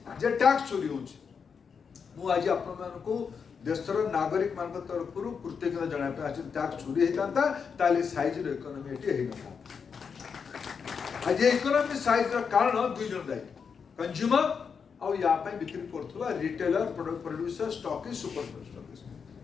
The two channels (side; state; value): right; quieter; 6.1 dB